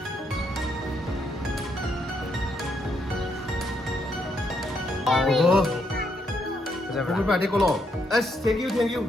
Everybody go long. Yes, thank you.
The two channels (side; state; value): both; normal; correlation 0.76